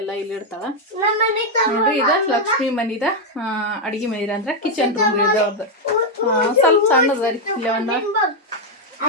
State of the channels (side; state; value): both; normal; correlation 0.02